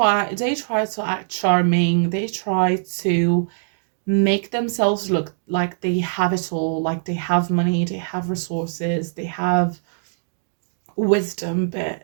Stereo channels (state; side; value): silent; left; digital silence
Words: to act charming. They try to make themselves look like they have it all, like they have money, they have resources, they have wisdom,